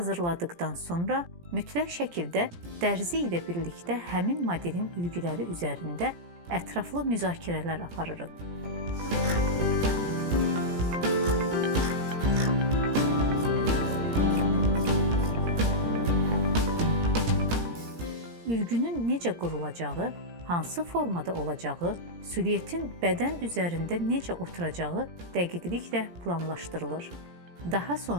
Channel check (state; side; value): late; left; 17 ms